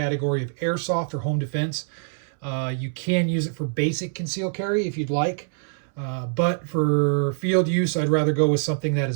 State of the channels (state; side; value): silent; left; 62 dB below the other